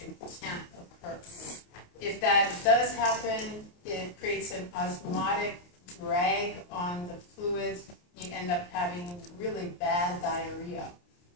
can't occur. If that does happen, it creates an osmotic drag on the fluids. You end up having really bad diarrhea.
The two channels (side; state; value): right; late; 28 ms